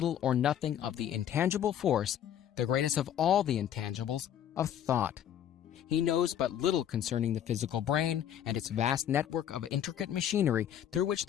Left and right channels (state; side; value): quieter; right; 10.1 dB